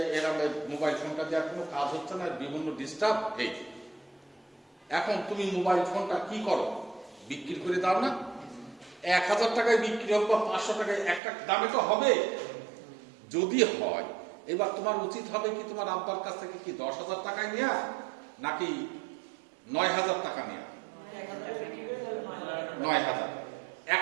এরকম মোবাইল ফোনটা দেওয়ার কোনো কাজ হচ্ছে না, বিভিন্ন ডিস্টার্ব এই। এখন তুমি মোবাইল ফোনটা কি করো, বিক্রি করে দাও না? 1,000 টাকায় বিক্রি হোক বা 500 টাকায়, একটা দামে তো হবে। যদি হয়, এবার তোমার উচিত হবে কি তোমার আব্বার কাছ থেকে কি 10,000 টাকায় নেওয়া নাকি 9,000 টাকা নেওয়া? 9,000।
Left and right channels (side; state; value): left; drops out; at 11.2 s